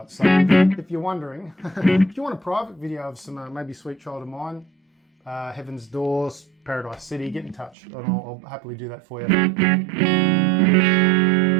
So if you're wondering, if you want a private video of some maybe Sweet Child of Mine, Heaven's Doors, Paradise City, get in touch and I'll happily do that for you.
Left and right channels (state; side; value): drops out; left; at 7.8 s